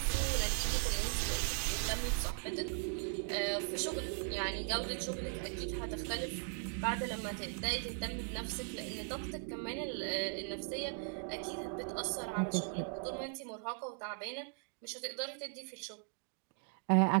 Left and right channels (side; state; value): left; silent; 52 dB below the other